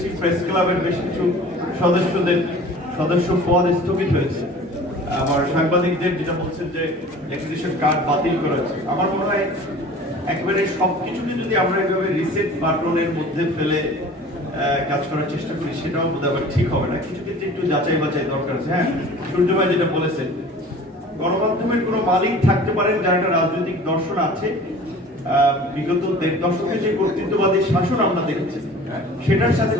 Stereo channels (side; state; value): both; normal; correlation 0.44